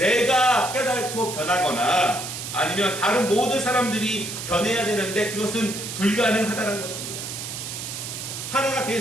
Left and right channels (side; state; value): right; noise; hiss, 7 dB below the sound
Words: 깨닫고 변하거나 아니면 다른 모든 사람들이 변해야 되는데 그것은 불가능하다는 것입니다. 하나가 될